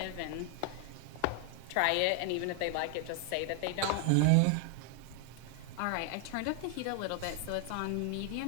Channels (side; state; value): both; different; correlation 0.00